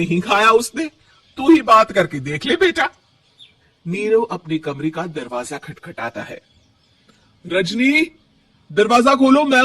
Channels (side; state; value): both; identical; correlation 1.00